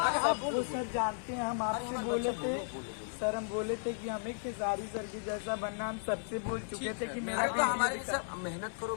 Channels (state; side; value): silent; right; 55 dB below the other